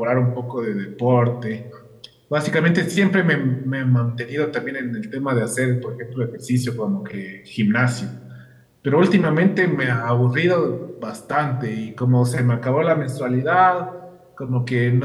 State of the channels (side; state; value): both; identical; correlation 1.00